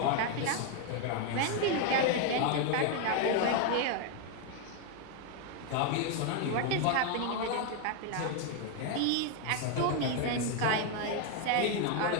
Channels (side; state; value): both; different; correlation 0.01